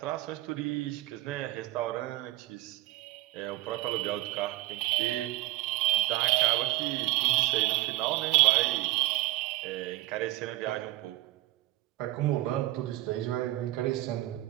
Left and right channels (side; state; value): left; quieter; 17.5 dB